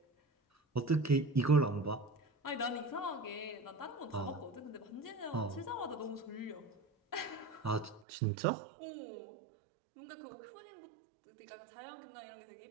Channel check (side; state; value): left; drops out; at 8.1 s